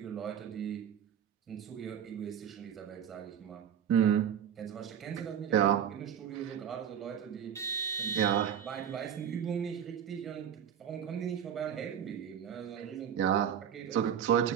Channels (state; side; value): quieter; left; 8.9 dB